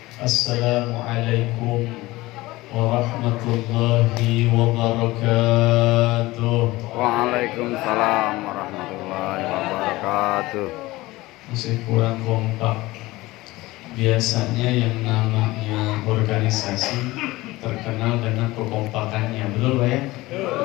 Assalamualaikum warahmatullahi wabarakatuh. Waalaikumsalam warahmatullahi wabarakatuh. Masih kurang kompak. Biasanya yang namanya organisasi terkenal dengan kekompakannya, betul Pak ya?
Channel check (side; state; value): right; quieter; 19.5 dB